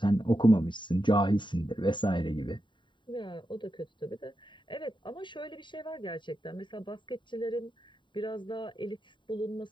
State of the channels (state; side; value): late; right; 0.23 ms